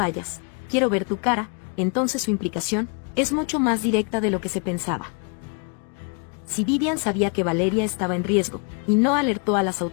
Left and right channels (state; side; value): quieter; right; 38.3 dB